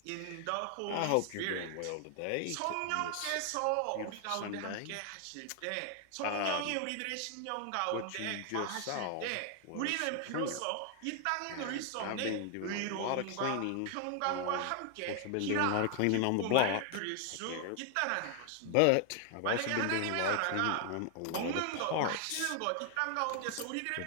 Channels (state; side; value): different; both; correlation 0.00